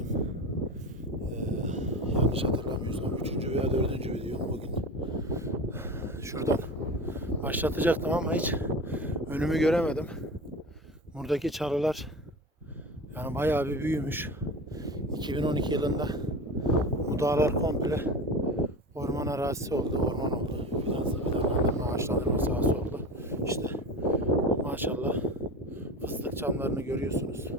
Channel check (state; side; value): normal; both; correlation 0.30